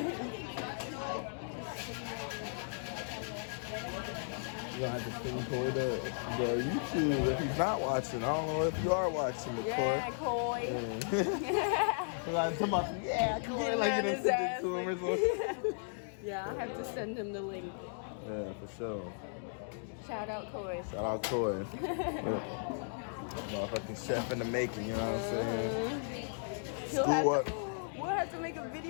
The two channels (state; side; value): silent; right; digital silence